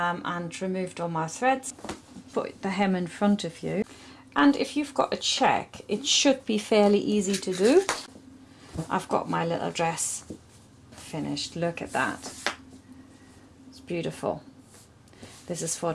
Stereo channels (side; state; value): both; identical; correlation 1.00